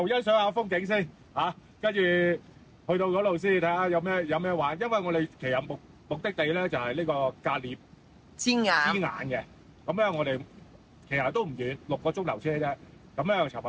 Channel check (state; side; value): identical; both; correlation 1.00